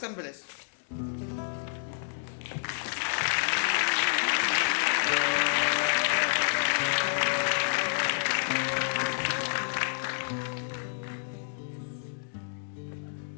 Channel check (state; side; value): silent; right; digital silence